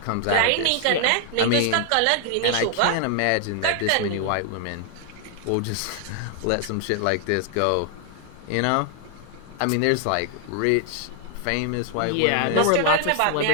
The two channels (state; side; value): different; both; correlation 0.00